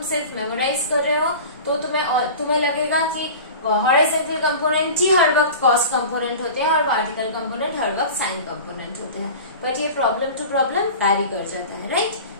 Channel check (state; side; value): inverted; both; correlation -0.36